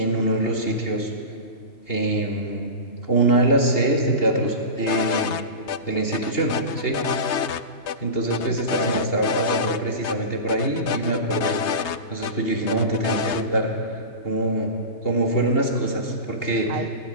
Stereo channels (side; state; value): right; late; 3.2 ms